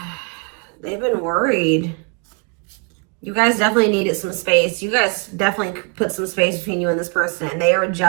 worried. You guys definitely needed some space. You guys definitely put some space between you and this person. And they are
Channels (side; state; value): left; quieter; 35.6 dB